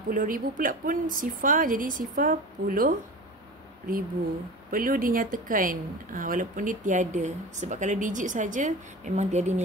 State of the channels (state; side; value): normal; both; correlation 0.33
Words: pula pun sifar, jadi sifar 10,000. Perlu dinyatakan walaupun dia tiada, sebab kalau digit saja memang tiada